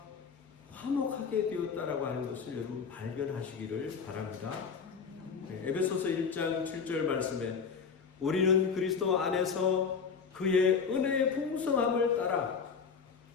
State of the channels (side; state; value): right; quieter; 5.9 dB